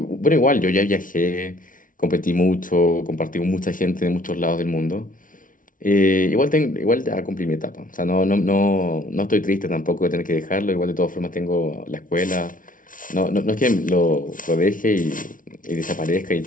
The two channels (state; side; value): late; right; 0.38 ms